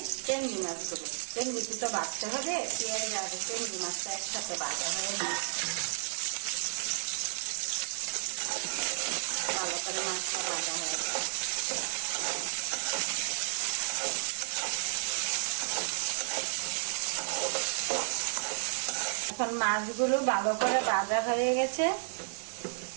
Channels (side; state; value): left; silent; digital silence